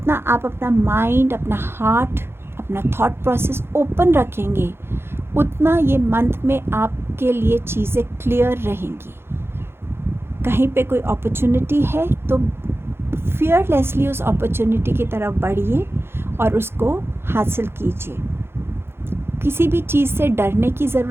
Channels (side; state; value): left; late; 0.11 ms